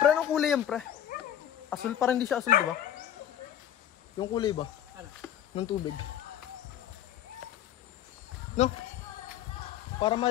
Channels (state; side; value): quieter; right; 10.8 dB